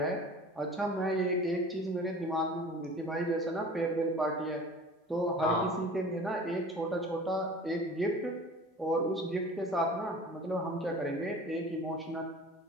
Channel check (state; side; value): normal; both; correlation 0.42